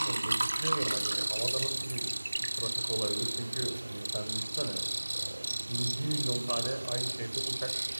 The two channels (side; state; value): both; inverted; correlation -1.00